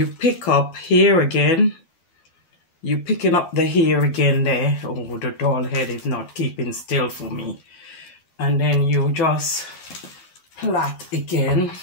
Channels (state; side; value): late; right; 12 ms